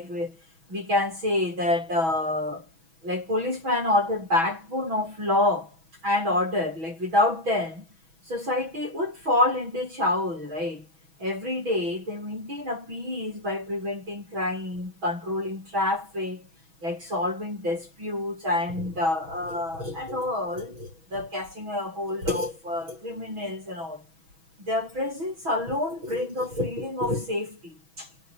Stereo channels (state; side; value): late; left; 6.1 ms